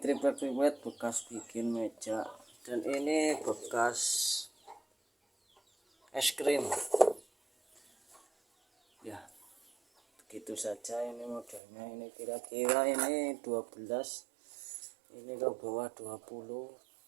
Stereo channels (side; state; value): left; drops out; at 11.6 s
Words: bekas bikin meja, dan ini bekas es krim ya. Begitu saja ini modelnya. Ini kira-kira ini 12, ini ke bawah